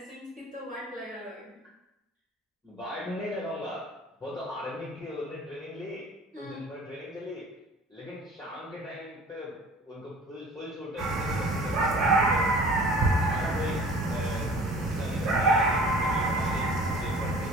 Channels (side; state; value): both; normal; correlation 0.46